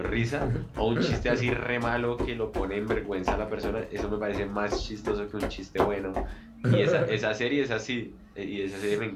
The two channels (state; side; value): identical; both; correlation 1.00